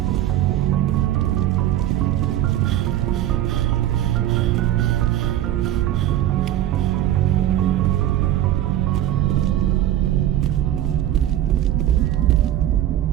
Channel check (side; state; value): left; quieter; 12.6 dB